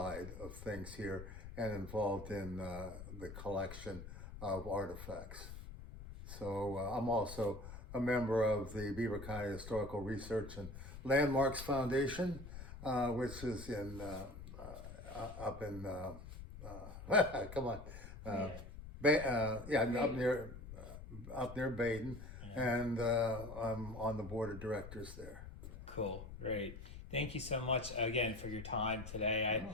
of things here and involved in the collection of artifacts. So I'm also a member of the Beaver County Historical Research and Landmarks Foundation, which is in up in come on, up near Baden, and I'm on the board of directors there. Cool, great. Thank you so much again for your time today.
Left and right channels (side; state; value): left; noise; rumble, 11 dB below the sound